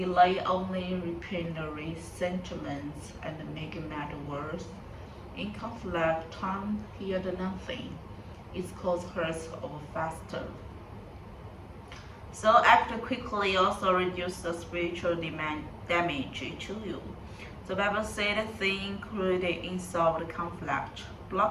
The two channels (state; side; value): identical; both; correlation 1.00